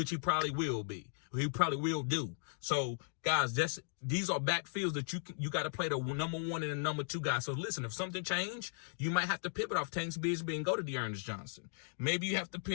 he probably will be. He probably will do. So, guys, these are backfields that you got to play the number one and the number two guys. So, listen, if something changed, you might have to pivot off Tanks Bigsby and go to Dearness Johnson. Maybe you have to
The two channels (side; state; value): right; silent; digital silence